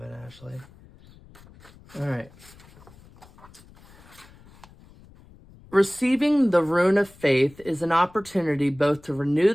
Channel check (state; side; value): noise; left; rumble, 24 dB below the sound